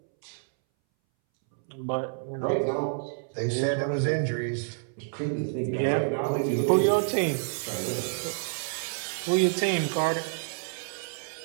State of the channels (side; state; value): left; silent; 59 dB below the other